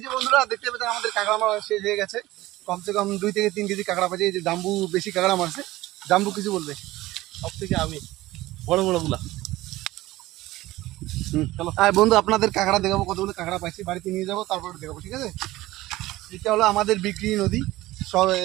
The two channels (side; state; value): left; quieter; 17.6 dB